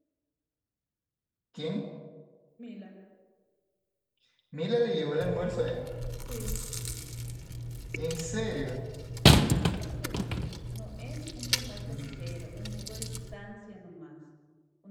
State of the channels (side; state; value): both; identical; correlation 1.00